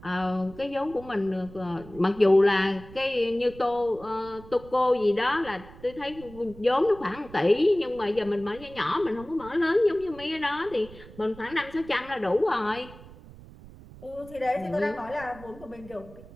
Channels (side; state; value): right; noise; rumble, 19 dB below the sound